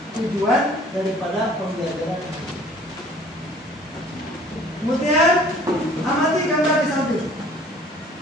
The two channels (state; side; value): normal; both; correlation 0.52